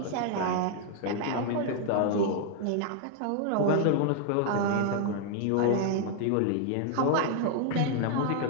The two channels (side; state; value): both; different; correlation 0.00